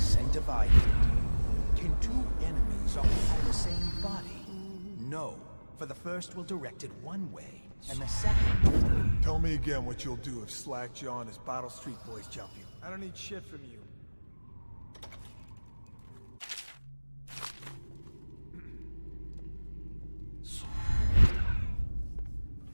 and divided. Can two enemies occupy the same body? No, for the first will direct it one way, and the second... Tell me again what you'll do if Slackjaw and his Bottle Street boys jump you. I don't need shit from you.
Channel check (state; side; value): inverted; both; correlation -1.00